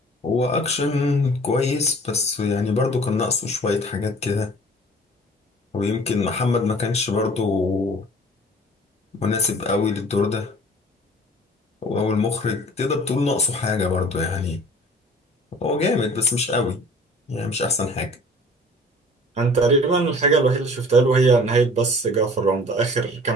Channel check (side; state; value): both; normal; correlation 0.48